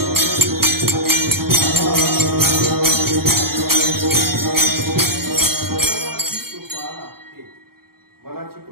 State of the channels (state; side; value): late; left; 0.94 ms